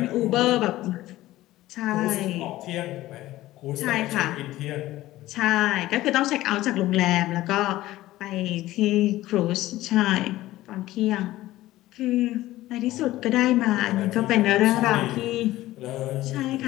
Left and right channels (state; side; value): quieter; right; 16.2 dB